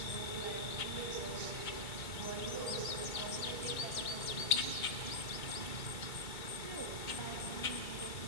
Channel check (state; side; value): late; right; 2.2 ms